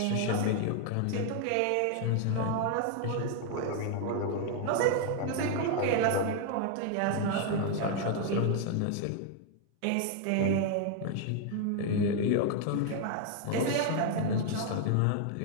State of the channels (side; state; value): both; different; correlation 0.00